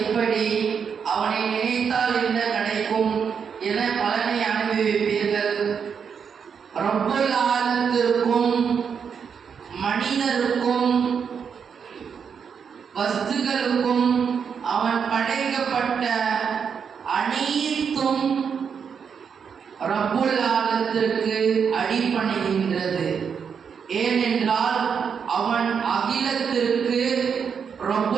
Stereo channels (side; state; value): left; quieter; 6.7 dB